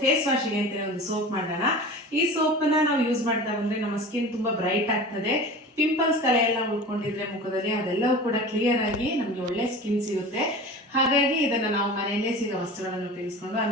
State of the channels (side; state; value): both; normal; correlation 0.36